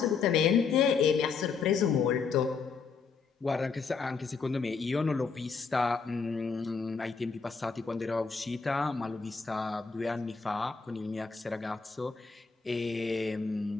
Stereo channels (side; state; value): right; quieter; 5.2 dB